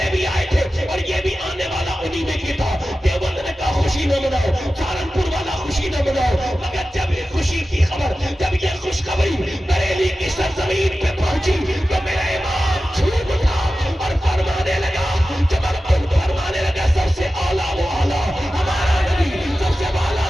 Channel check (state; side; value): normal; both; correlation 0.94